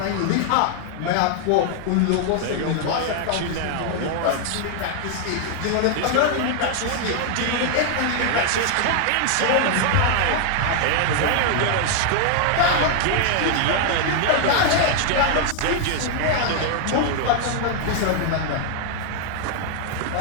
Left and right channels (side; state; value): both; different; correlation 0.00